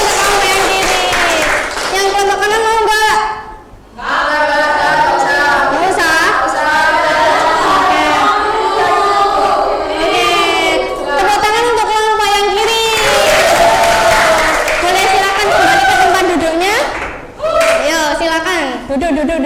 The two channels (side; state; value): both; identical; correlation 1.00